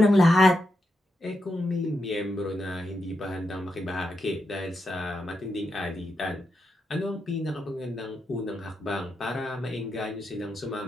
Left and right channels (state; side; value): normal; both; correlation 0.85